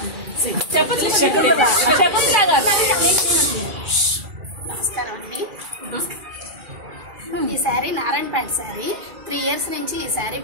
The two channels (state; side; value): late; left; 2.3 ms